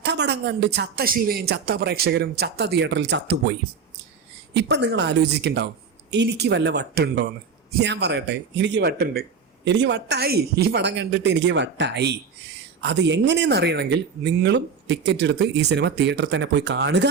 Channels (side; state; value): left; quieter; 5.7 dB